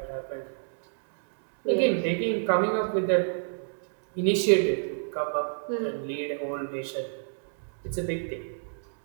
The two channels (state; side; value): silent; left; digital silence